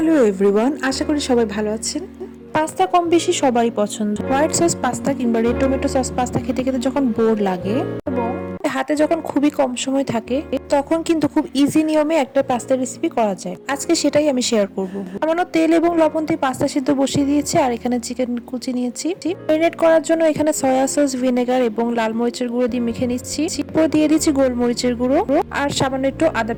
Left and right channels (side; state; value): both; identical; correlation 1.00